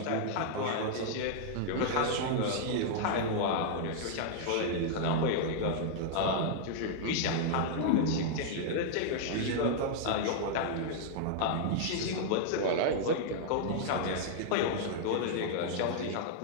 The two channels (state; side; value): different; both; correlation -0.01